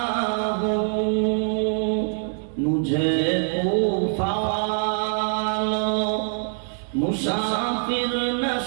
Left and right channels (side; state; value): left; silent; digital silence